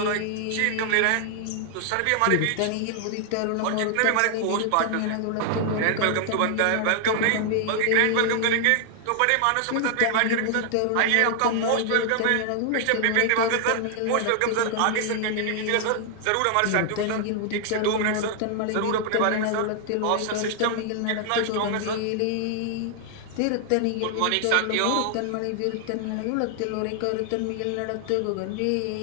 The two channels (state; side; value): different; both; correlation 0.00